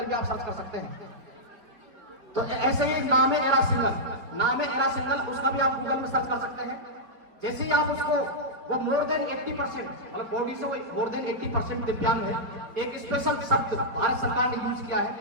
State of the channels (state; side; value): late; left; 4.9 ms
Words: भी आप सर्च कर सकते हैं। तो ऐसे ही नाम है एरा सिंगल, उसका भी आप गूगल में सर्च कर सकते हैं। जैसे ही आप उसको, वो मोर देन 80%, मतलब बॉडी से वो मोर देन 80% दिव्यांग है। एक स्पेशल शब्द भारत सरकार ने यूज किया